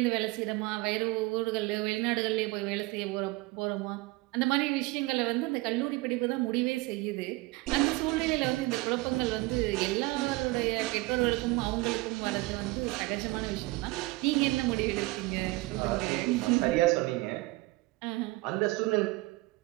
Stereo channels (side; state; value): left; quieter; 22.0 dB